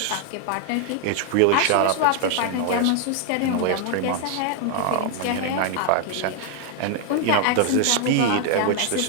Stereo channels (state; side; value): different; both; correlation 0.00